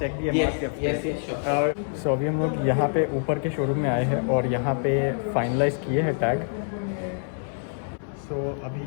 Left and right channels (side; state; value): right; silent; 61 dB below the other